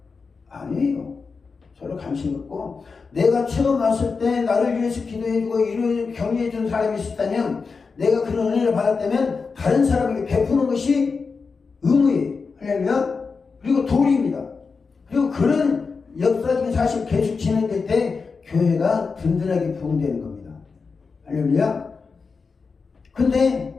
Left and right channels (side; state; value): right; quieter; 4.8 dB